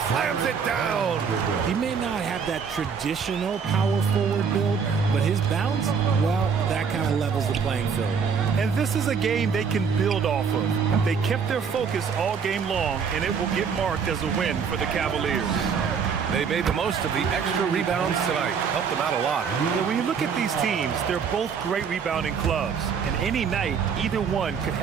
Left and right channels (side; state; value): left; quieter; 6.3 dB